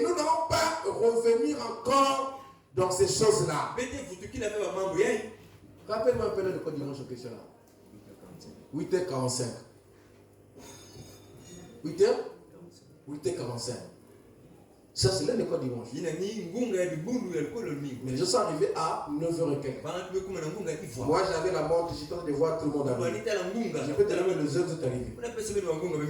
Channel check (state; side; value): identical; both; correlation 1.00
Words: nous n'allons pas revenir encore dans ces choses-là. Rappelle-moi un peu le code dimanche en question là. 8h45. 8h45. Ça, c'est là le code dimanche. Mais je suis arrivé à 9h et quelques. Moi, j'avais la montre, j'étais en train de voir tout le monde arriver. Je peux te donner les heures où vous êtes arrivé.